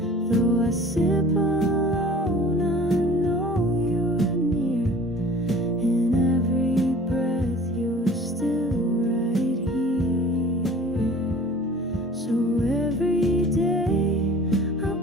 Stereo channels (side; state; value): both; normal; correlation 0.47